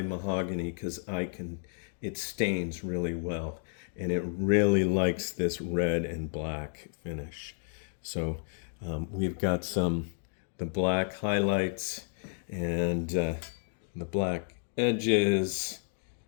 mahogany because it stains really well, and it really likes this red and black finish. So we've got the black highlights and the black edges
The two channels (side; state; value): right; silent; digital silence